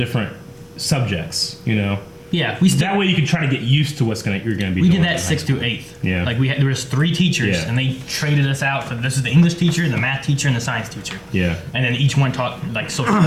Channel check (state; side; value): identical; both; correlation 1.00